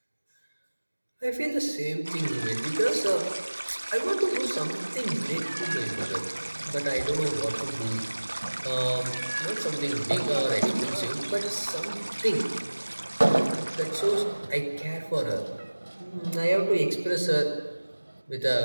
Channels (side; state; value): both; inverted; correlation -1.00